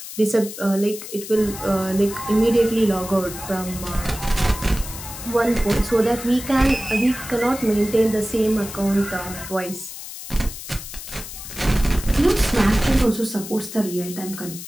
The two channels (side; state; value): left; noise; hiss, 11 dB below the sound